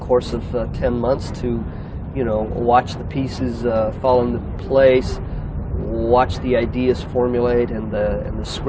of 10 months to, you know, watch the pieces fall into place, watch the ideas formulate, and the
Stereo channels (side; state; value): both; identical; correlation 1.00